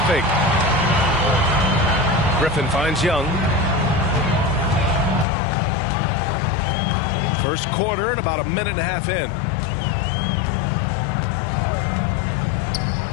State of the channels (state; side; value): drops out; right; at 5.2 s